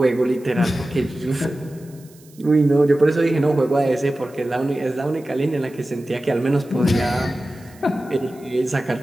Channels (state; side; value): noise; right; hiss, 27 dB below the sound